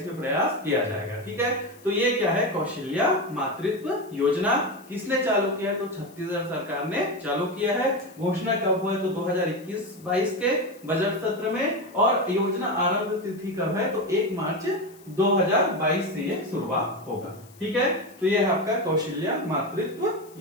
प्रयास किया जाएगा, ठीक है। तो ये क्या है, कौशल्या मातृत्व योजना। किसने चालू किया, तो छत्तीसगढ़ सरकार ने चालू किया है। घोषणा कब हुआ है, तो 2021-22 के बजट सत्र में। और योजना आरंभ तिथि कब है, तो 1 मार्च 2022 से ये शुरुआत होगा, ठीक है। तो ये है आपका कौशल्या मातृत्व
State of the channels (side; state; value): left; noise; hiss, 25 dB below the sound